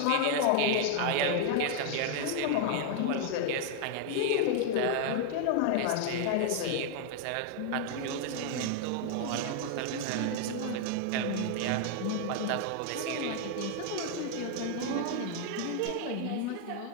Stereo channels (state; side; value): different; both; correlation 0.00